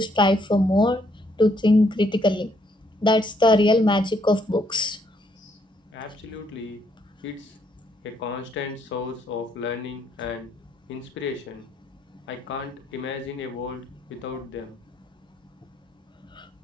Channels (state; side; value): normal; both; correlation 0.71